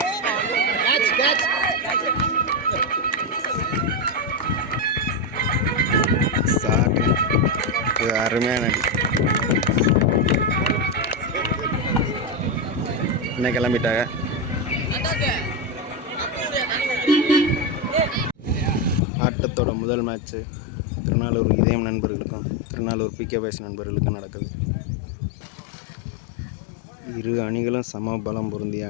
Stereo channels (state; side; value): drops out; right; at 19.0 s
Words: அருமையான அடி. என்ன கிளம்பிட்டாங்க. ஆட்டத்தோட முதல் மேட்ச்சு திருநாளூர் இதயம் நண்பர்களுக்கும் திருநாளூர் பிகே பாய்ஸ் நண்பர்களுக்கும் நடக்குது. இரு அணிகளும் சம பலம் பொருந்திய